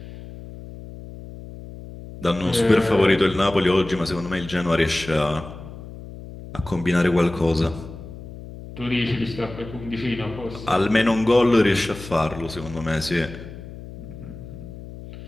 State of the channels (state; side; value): noise; left; hum, 14 dB below the sound